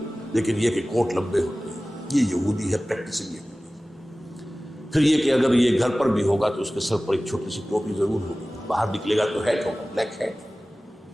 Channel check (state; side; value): normal; both; correlation 0.97